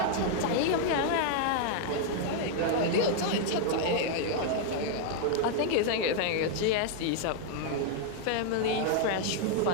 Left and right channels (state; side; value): different; both; correlation 0.00